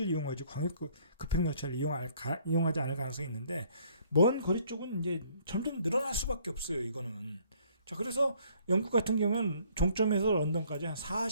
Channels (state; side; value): inverted; both; correlation -0.61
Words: 이용하지 광역 급행열차를 이용하지 않을 가능성이 있는데 먼 거리 쪽은 이제 점점 늘어날 수밖에 없어요. 이거는. 자, 그래서 영국 같은 경우는 종점에서 런던까지 한